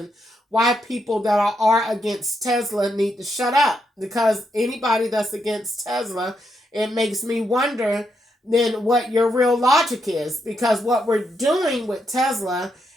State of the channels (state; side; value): normal; both; correlation 0.80